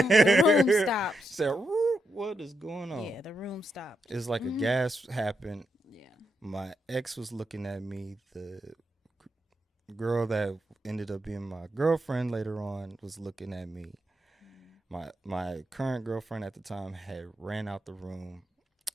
room stops. Said, what is going on? Yeah. The room stopped. It's like a Mhm. gas happened. Yeah. My ex was looking at me. The girl that ended up being my girlfriend later on was looking at me. Mhm. My current girlfriend at the time had ran out the room,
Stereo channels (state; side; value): normal; both; correlation 0.83